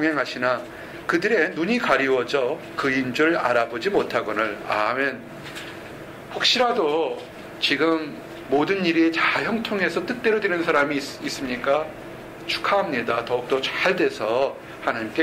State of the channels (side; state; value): both; identical; correlation 1.00